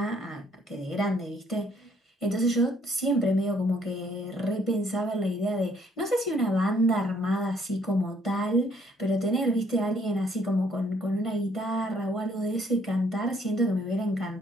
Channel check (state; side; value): normal; both; correlation 0.65